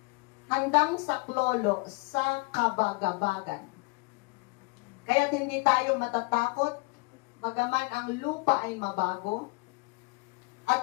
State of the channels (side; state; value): right; quieter; 29.6 dB